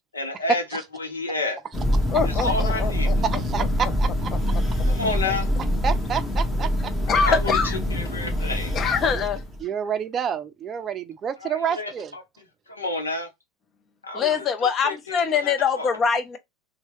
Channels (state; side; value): normal; both; correlation 0.55